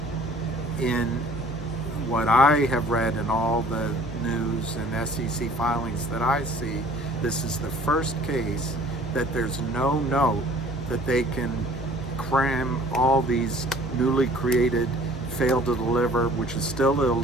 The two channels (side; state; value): both; normal; correlation 0.52